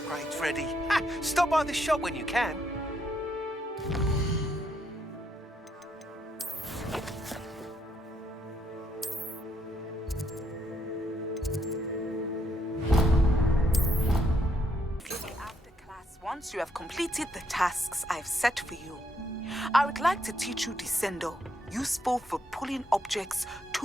food's ready. Ha! Stop by the shop when you can. After class, once you have completed the tasks I've set for you, I would like to teach you Descendo, useful for pulling objects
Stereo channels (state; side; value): normal; both; correlation 0.75